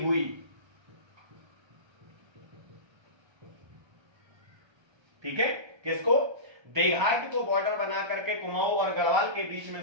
ठीक है, किसको? देघाट को बॉर्डर बना करके कुमाऊं और गढ़वाल के बीच में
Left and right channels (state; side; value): late; left; 1.3 ms